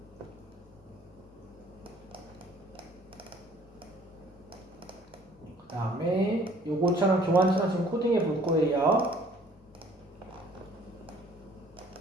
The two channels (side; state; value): both; normal; correlation 0.56